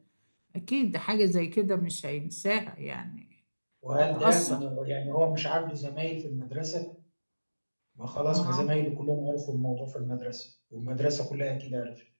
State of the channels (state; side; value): inverted; both; correlation -1.00